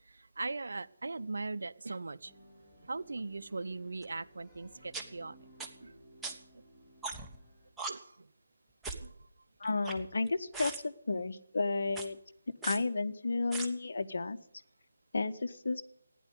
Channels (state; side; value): inverted; both; correlation -0.88